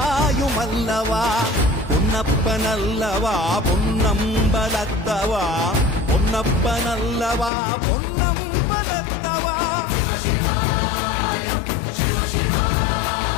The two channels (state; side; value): drops out; right; at 7.5 s